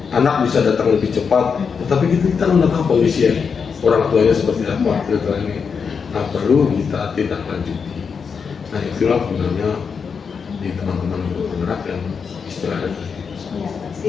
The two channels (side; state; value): right; quieter; 6.0 dB